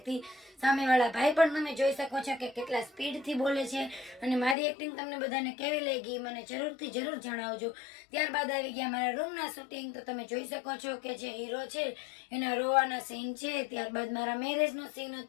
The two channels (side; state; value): right; drops out; at 4.5 s